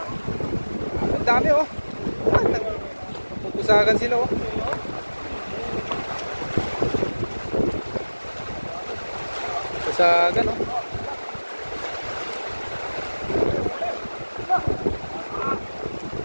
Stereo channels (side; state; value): both; inverted; correlation -1.00